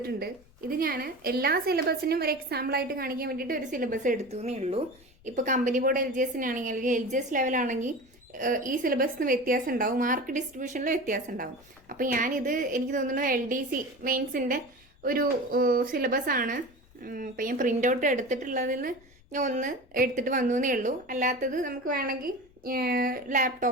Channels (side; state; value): left; noise; rumble, 28 dB below the sound